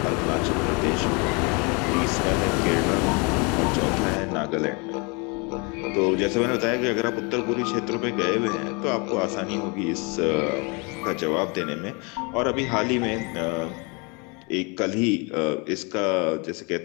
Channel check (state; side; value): quieter; right; 31.0 dB